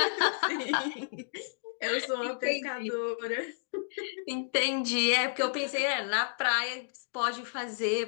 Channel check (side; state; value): right; silent; digital silence